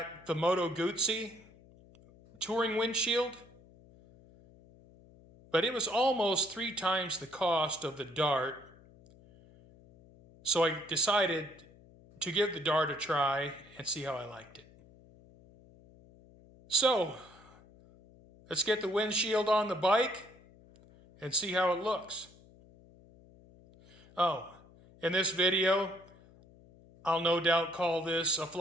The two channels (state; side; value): noise; left; hum, 25 dB below the sound